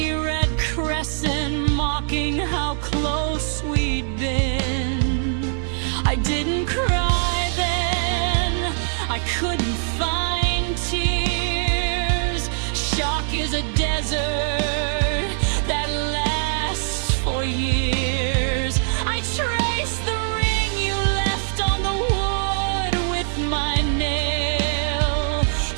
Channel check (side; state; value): left; silent; 58 dB below the other